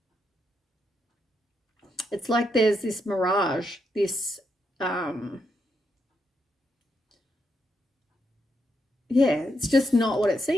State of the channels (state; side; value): normal; both; correlation 0.81